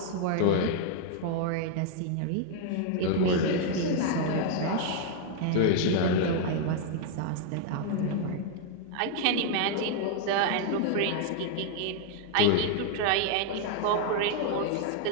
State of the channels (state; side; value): different; both; correlation 0.00